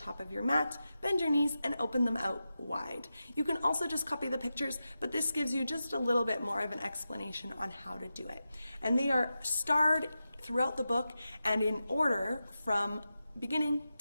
of your mat, bend your knees and open them out wide. You can also just copy the pictures, but this gives you just a little bit more of an explanation on how to do it. And they are starred throughout the book and in order from beginning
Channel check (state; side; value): inverted; both; correlation -0.91